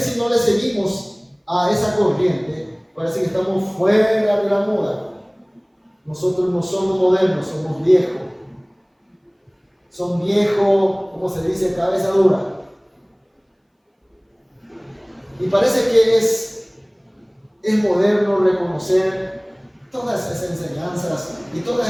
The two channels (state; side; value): identical; both; correlation 1.00